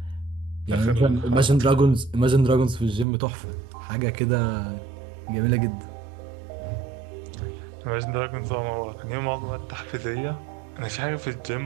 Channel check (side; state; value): left; drops out; at 3.1 s